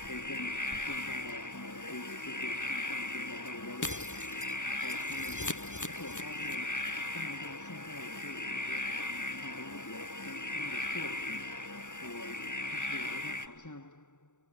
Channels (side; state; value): right; late; 0.86 ms